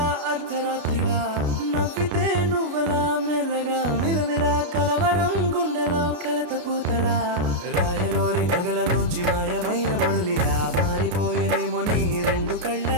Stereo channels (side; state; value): left; late; 33 ms